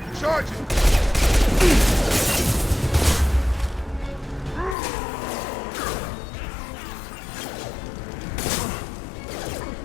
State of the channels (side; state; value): right; drops out; at 4.8 s